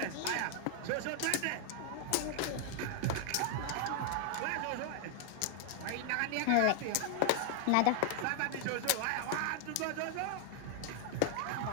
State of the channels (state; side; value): different; both; correlation 0.00